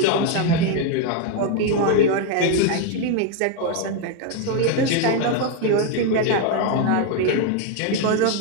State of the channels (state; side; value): different; both; correlation 0.01